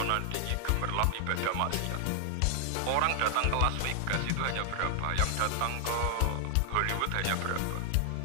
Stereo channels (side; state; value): both; different; correlation 0.00